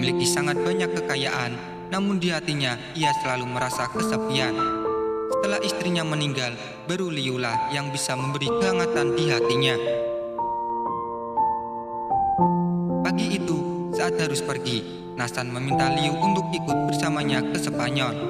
sangat banyak kekayaan, namun di hatinya ia selalu merasa kesepian. Setelah istrinya meninggal, baru Liulah yang bisa memberi kehangatan di hatinya. Pagi itu, saat harus pergi, Nassan meminta Liu untuk ikut bersamanya ke Spanyol.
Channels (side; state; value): both; identical; correlation 1.00